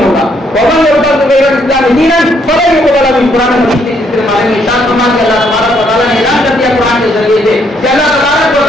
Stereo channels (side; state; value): both; normal; correlation 0.71